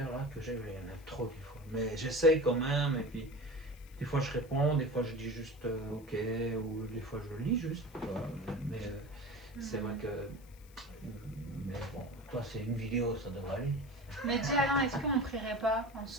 là que j'ai. Il y en a trop des fois, mais j'essaye quand même. Et puis, des fois, je réponds, des fois, je dis juste OK, ou des fois, je lis juste. Mais c'est vrai que. Mais bon, toi, c'est une vidéo, ça devrait aller. Mais dis Alain, est-ce qu'on prierait pas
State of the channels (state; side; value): noise; left; hiss, 26 dB below the sound